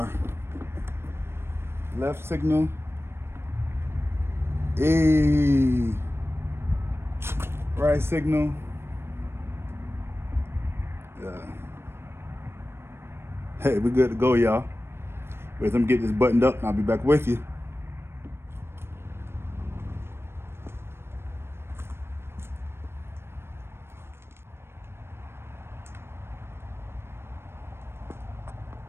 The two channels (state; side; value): late; left; 0.12 ms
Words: left signal. Right signal. Hey, we're good to go, y'all. Wait, let me get this buttoned up and I'll be back with you.